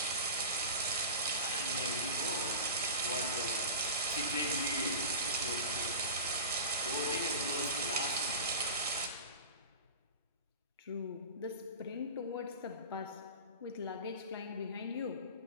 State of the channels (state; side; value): inverted; both; correlation -0.31